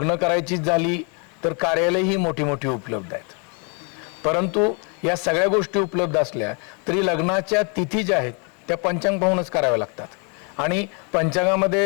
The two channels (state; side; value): quieter; right; 36.2 dB